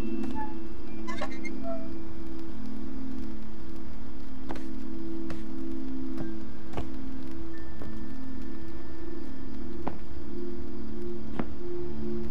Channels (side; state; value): both; identical; correlation 1.00